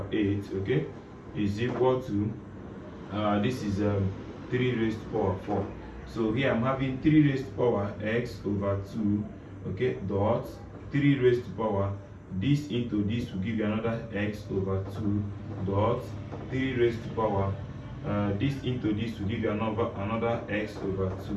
8, okay, is equal to this is 3 raised to power 4. So here I'm having 3 raised to power x over 2, okay, dot 3 raised to power this into this will give you another x over 2 dot 3 raised to power this into this will give you another x over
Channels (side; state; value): both; identical; correlation 1.00